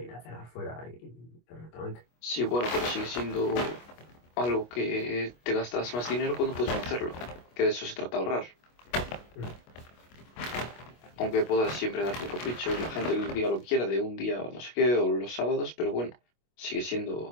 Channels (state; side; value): late; right; 25 ms